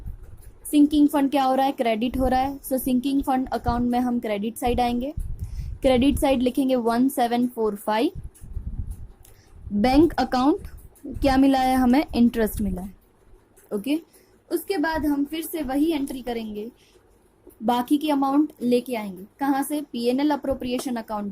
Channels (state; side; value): identical; both; correlation 1.00